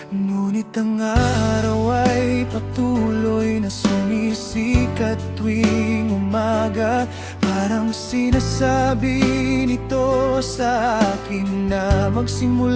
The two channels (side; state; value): both; identical; correlation 1.00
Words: Ngunit ang araw ay patuloy na sumisikat tuwing umaga. Parang sinasabi nito sa akin na